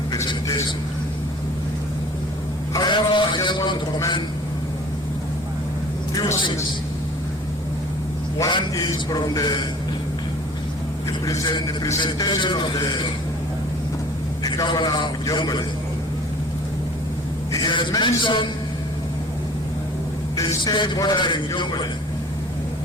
presentation. However, I just want to commend few things. One is from the presentation of the governor of Jonglei. He has mentioned the state bordering Jonglei,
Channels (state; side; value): normal; both; correlation 0.47